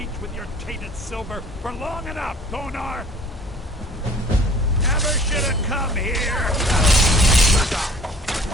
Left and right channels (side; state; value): both; normal; correlation 0.50